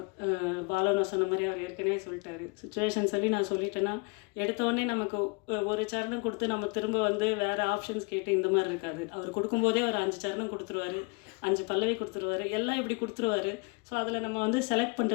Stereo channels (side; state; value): right; quieter; 31.1 dB